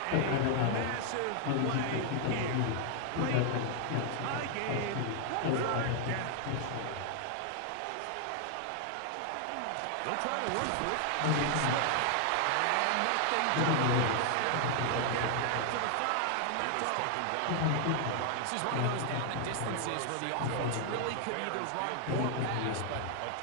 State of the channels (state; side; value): different; both; correlation 0.00